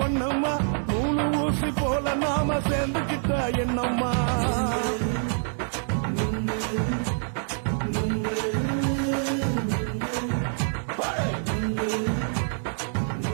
ஒன்னம்மா மூணு ஊசி போல நாம சேர்ந்துக்கிட்டா என்னம்மா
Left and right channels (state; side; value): silent; left; digital silence